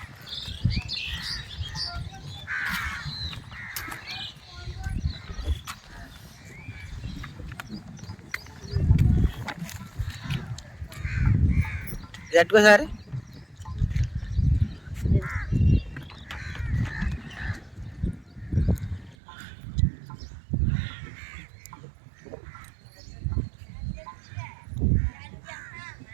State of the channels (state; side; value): drops out; left; at 19.2 s